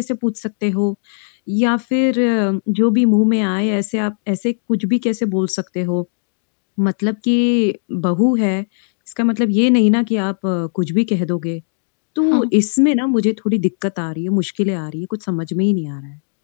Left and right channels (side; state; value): right; silent; digital silence